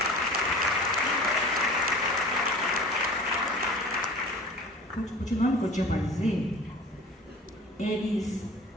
Continuando o que eu tinha para dizer, eles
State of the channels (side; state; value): both; normal; correlation 0.41